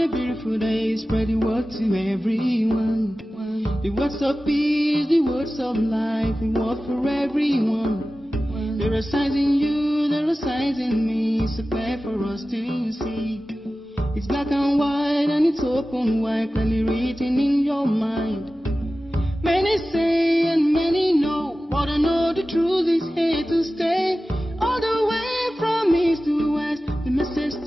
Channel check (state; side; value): normal; both; correlation 0.95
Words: beautiful day, spread the word to everyone. The words of peace, the words of life, the word for everyone. There are signs in you, there are signs in me, so clear for us to see. It's black and white and it's open wide, clearly written in your mind. Many say and many know, but I know the truth is here to stay. All the way from east to west, the message